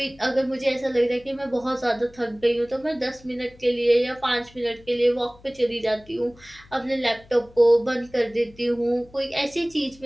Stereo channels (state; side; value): noise; left; hum, 25 dB below the sound